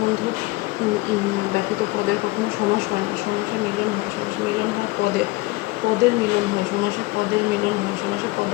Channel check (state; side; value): quieter; right; 22.2 dB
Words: ব্যতীত পদের কখনো সমাস হয় না। সমাসে মিলন হয়, সমাসে মিলন হয় পদের মিলন হয়, সমাসে পদের মিলন হয়, সমাসে